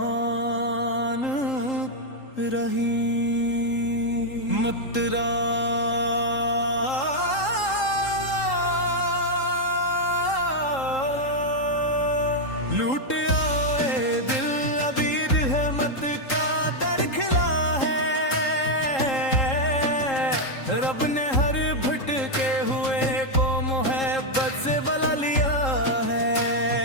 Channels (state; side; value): late; right; 3.8 ms